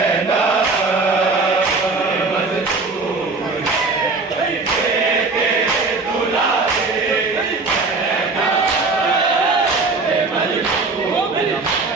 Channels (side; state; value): left; quieter; 3.8 dB